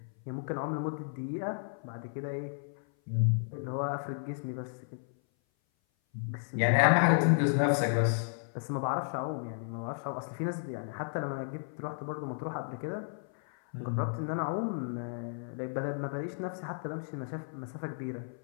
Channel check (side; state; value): right; silent; 56 dB below the other